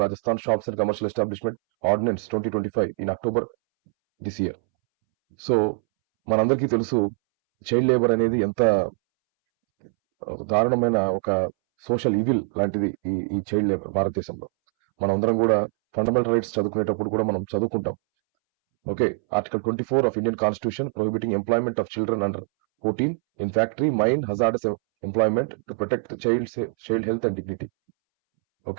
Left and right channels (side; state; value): left; silent; 63 dB below the other